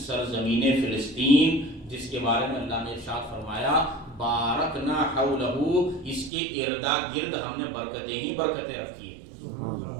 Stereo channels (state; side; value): drops out; left; at 6.3 s